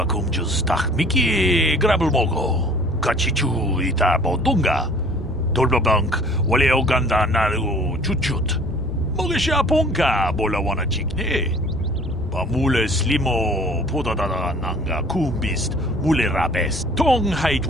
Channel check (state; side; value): normal; both; correlation 0.50